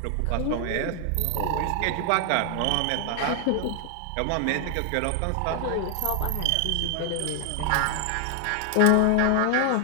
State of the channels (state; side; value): different; both; correlation 0.00